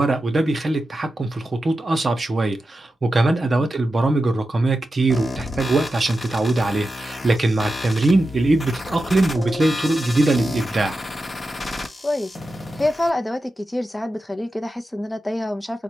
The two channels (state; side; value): normal; both; correlation 0.91